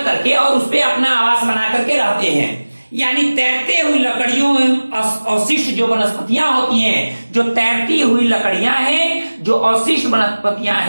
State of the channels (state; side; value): inverted; both; correlation -1.00